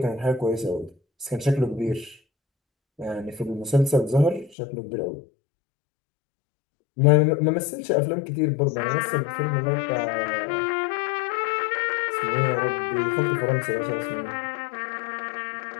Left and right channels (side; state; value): right; drops out; at 4.5 s